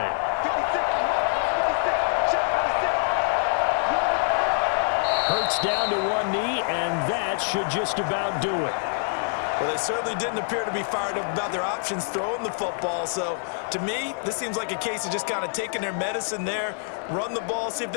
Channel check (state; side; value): silent; right; 61 dB below the other